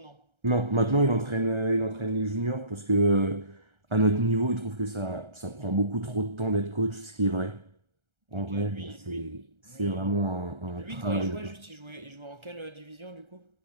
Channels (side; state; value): left; late; 1.3 ms